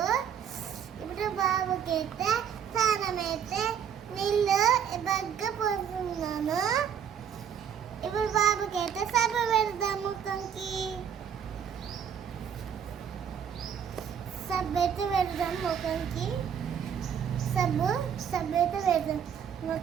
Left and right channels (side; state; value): left; quieter; 8.2 dB